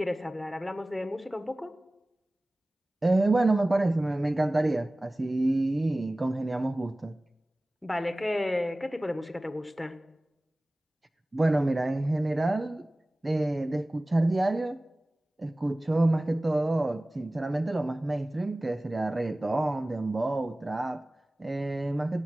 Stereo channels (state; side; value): normal; both; correlation 0.98